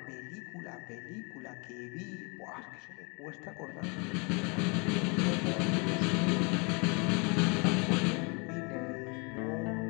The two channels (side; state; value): right; quieter; 31.9 dB